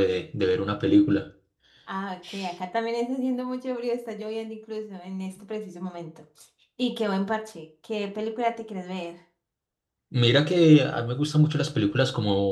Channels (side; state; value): both; identical; correlation 1.00